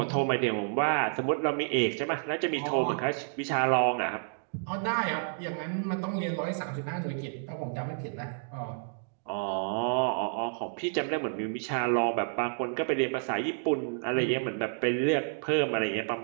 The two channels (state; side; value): silent; left; digital silence